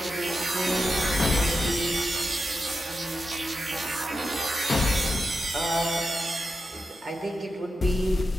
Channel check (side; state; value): both; normal; correlation 0.88